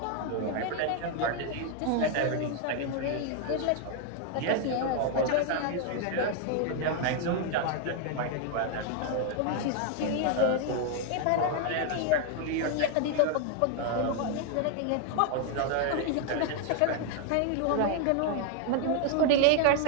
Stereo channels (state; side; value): different; both; correlation 0.00